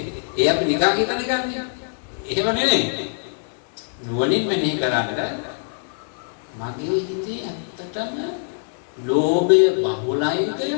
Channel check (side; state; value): right; silent; 63 dB below the other